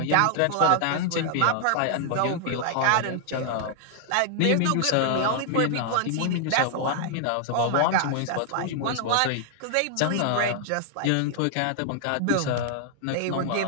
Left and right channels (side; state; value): both; different; correlation -0.01